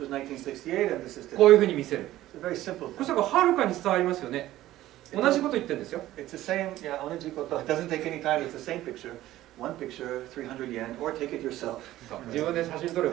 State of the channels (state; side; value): quieter; left; 14.9 dB